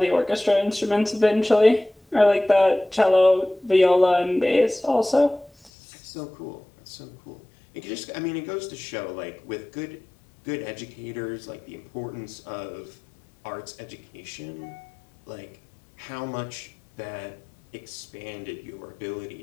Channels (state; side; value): drops out; right; at 5.7 s